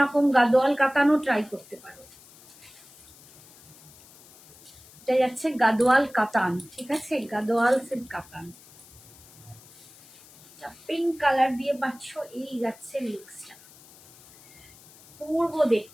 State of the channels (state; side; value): noise; left; hiss, 23 dB below the sound